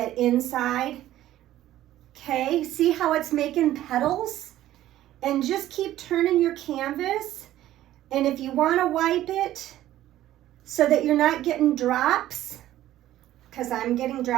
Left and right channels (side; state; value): left; quieter; 13.7 dB